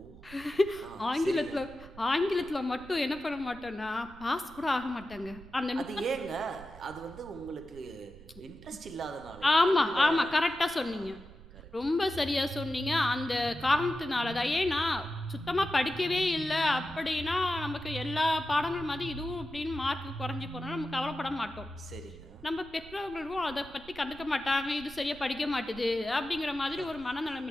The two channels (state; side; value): noise; right; rumble, 19 dB below the sound